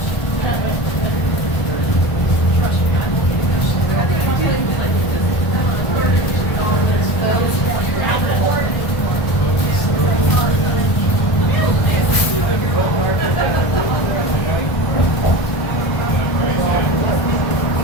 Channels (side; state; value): right; late; 1.4 ms